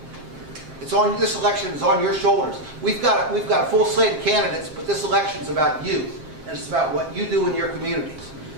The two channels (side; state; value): left; late; 7.5 ms